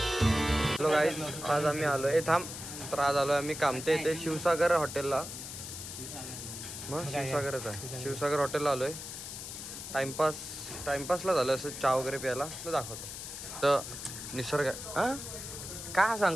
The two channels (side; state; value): left; noise; hiss, 9 dB below the sound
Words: हॅलो गाईज आज आम्ही आलोय थांब तर आज आलोय आम्ही कामते इथे शिवसागर हॉटेलला. मग शिवसागरच आहे शिवसागर हॉटेलला आलोय. टाइमपासला झालं असं चहा वगैरे प्यायला तर दाखवतो. तर निसर्ग काय